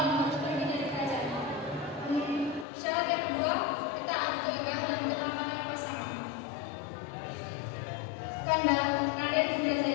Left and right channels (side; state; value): right; drops out; at 2.7 s